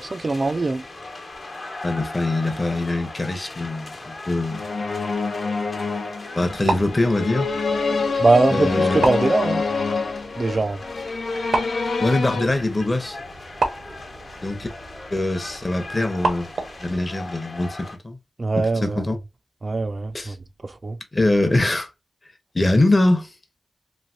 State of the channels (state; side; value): normal; both; correlation 0.93